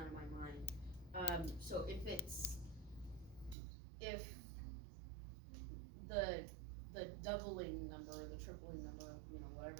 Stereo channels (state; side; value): drops out; left; at 3.6 s